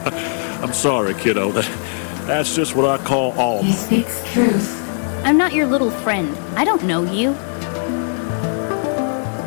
I'm sorry, kiddo. That's just what I call He Alma. speaks truth. I'm not your little friend. I don't know you.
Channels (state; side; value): silent; right; 57 dB below the other